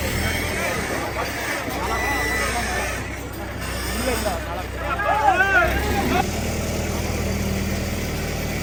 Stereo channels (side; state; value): both; identical; correlation 1.00